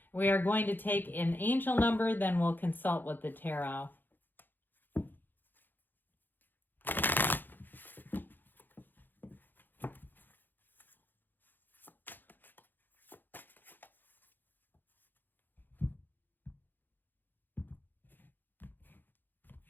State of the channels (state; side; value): late; right; 0.091 ms